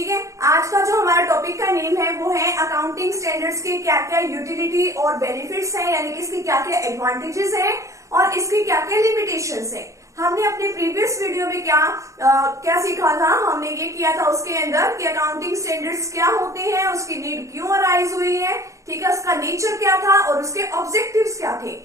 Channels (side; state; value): left; late; 0.15 ms